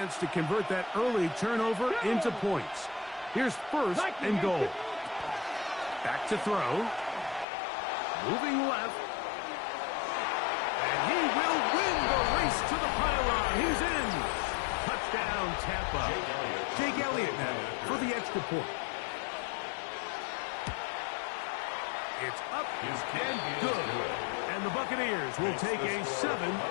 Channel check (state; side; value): drops out; right; at 7.5 s